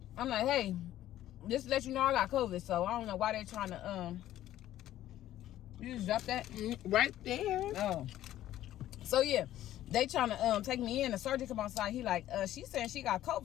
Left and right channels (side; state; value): right; quieter; 13.2 dB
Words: I'm like, hey, just to let you know I got COVID. So I don't know why they're trying to, you just dropped that? Right there. Oh. So yeah, they trying to take me in. The sergeant come outside. He like, she's saying she got